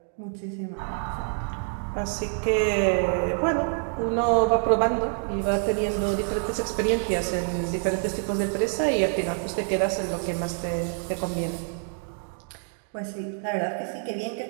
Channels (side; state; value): left; silent; 60 dB below the other